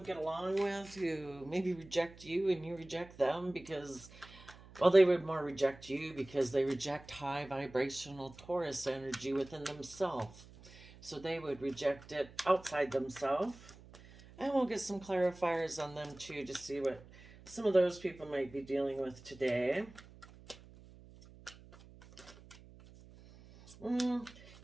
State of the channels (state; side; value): noise; right; hum, 20 dB below the sound